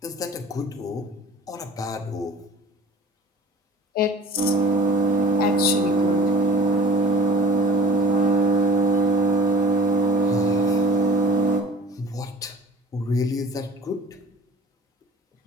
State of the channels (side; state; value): both; normal; correlation 0.45